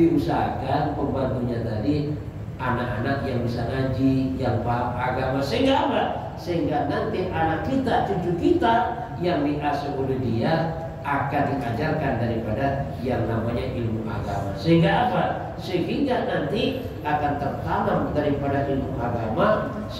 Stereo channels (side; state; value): both; identical; correlation 1.00